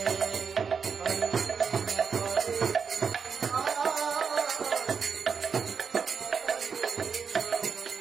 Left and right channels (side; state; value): left; quieter; 6.1 dB